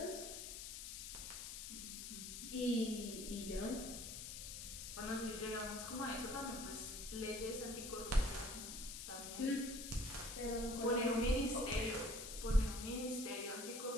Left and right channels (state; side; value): noise; left; hiss, 7 dB below the sound